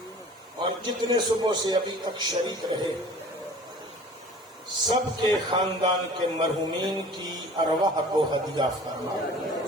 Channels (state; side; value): normal; both; correlation 0.45